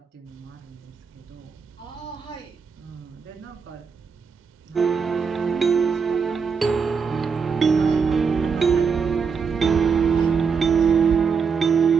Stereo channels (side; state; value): left; quieter; 5.9 dB